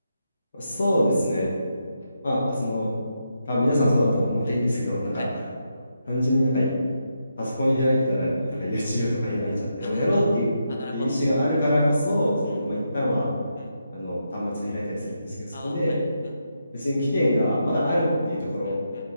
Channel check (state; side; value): inverted; both; correlation -0.83